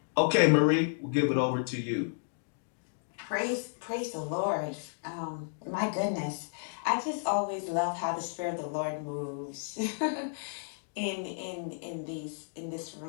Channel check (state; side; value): silent; right; digital silence